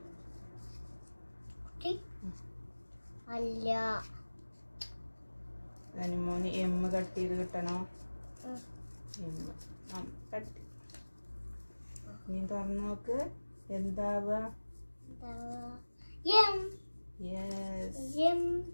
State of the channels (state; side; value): inverted; both; correlation -1.00